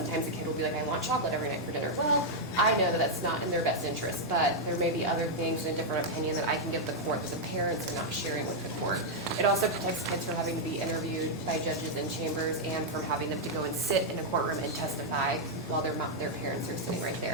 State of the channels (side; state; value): both; normal; correlation -0.03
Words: a kid will be like, I want chocolate every night for dinner. Well, I know that that's not in their best interest, but there may be other things and a different opinion that I can give the court that the parents are not sharing with the court. It also protects kids from having to be interviewed by judges in chambers and from having them to go and sit in a courtroom and testify while their parents are sitting right